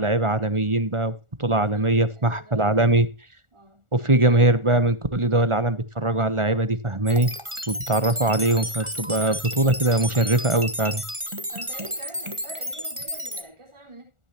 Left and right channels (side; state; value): left; late; 1.4 ms